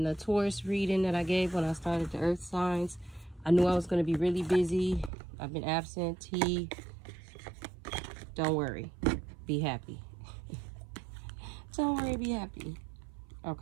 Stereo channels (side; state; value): left; drops out; at 5.1 s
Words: the Taurus reading that I gave when I started the earth signs, I knew I was going to be really busy. I've been absentee. Don't worry. Be happy. Don't worry, be happy.